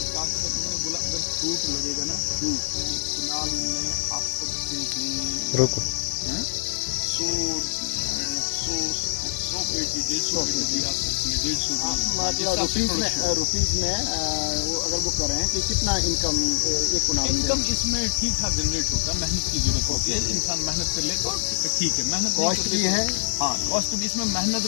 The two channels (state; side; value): silent; right; digital silence